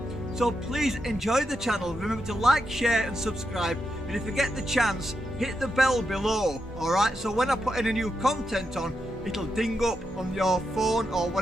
So please enjoy the channel. Remember to like, share and subscribe. And if you get the chance, hit the bell below. Alright, so when I put any new content on, it'll ding up on your phone or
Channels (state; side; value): normal; both; correlation 0.85